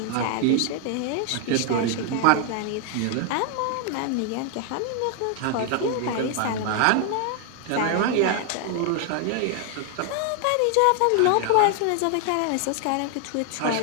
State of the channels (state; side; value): different; both; correlation 0.00